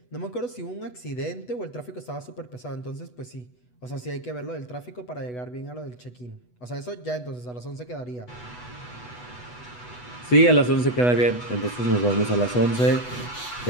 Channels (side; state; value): right; late; 8.1 ms